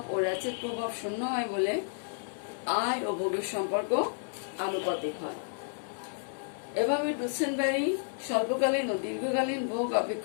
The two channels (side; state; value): right; silent; digital silence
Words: ও র্যাচেট প্রভাব শূন্য হয় বলে আয় ও ভোগের সম্পর্ক আনুপাতিক হয়। এভাবে ডুসেনবেরি স্বল্পকালীন ও দীর্ঘকালীন ভোগ